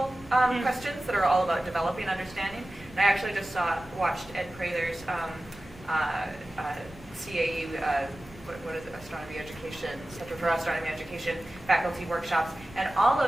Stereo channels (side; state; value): both; normal; correlation 0.96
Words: questions that are all about developing understanding. And I actually just watched Ed Prather's CAE, what is it, Astronomy Education, Center for Astronomy Education faculty workshops, and all